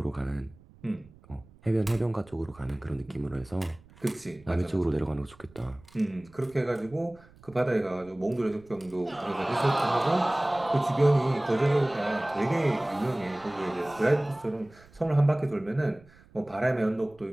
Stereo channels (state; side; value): noise; right; rumble, 25 dB below the sound